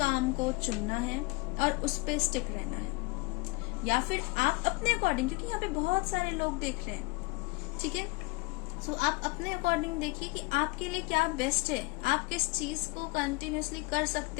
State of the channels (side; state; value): right; quieter; 25.4 dB